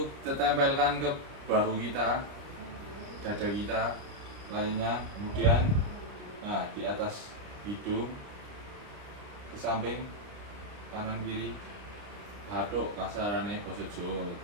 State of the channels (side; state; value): left; late; 30 ms